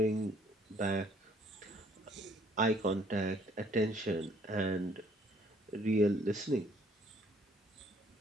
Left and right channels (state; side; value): normal; both; correlation 0.61